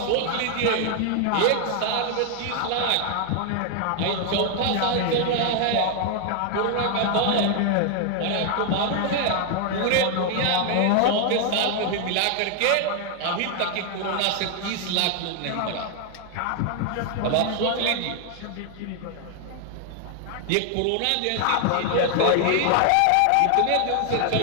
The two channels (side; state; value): both; different; correlation 0.00